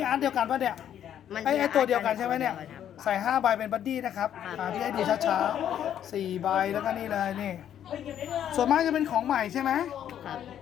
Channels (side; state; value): right; quieter; 10.1 dB